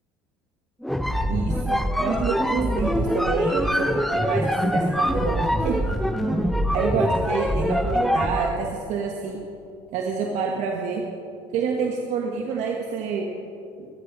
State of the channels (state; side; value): normal; both; correlation 0.74